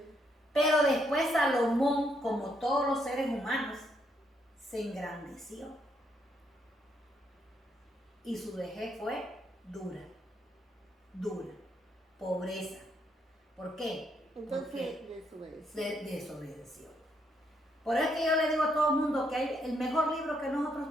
Pero después Salomón, como todos los seres humanos, se engrandeció. Y su vejez fue dura, pobreza. ¿Por qué? Entonces desobedeció. Por eso es que yo le digo a todo el mundo que el mejor libro que nosotros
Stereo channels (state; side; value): normal; both; correlation 0.75